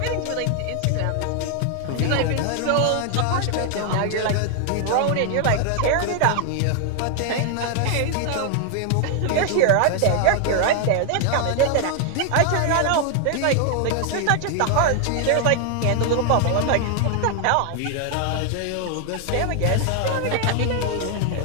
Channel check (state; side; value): different; both; correlation 0.00